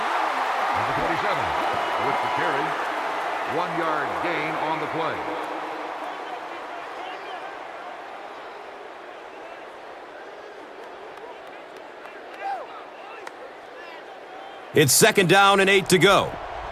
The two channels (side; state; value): both; identical; correlation 1.00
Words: 27 with the carry. 1-yard gain on the play. It's 2nd down and 8 to go.